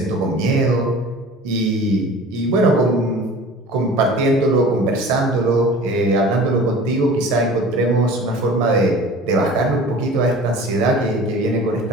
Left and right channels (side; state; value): both; normal; correlation 0.42